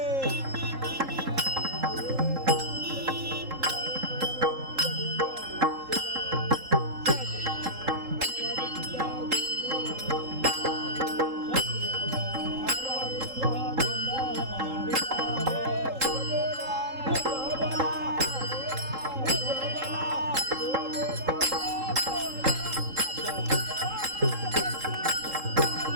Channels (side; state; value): left; late; 3.8 ms